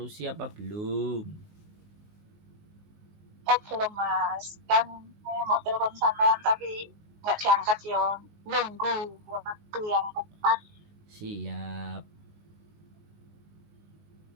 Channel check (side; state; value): left; late; 19 ms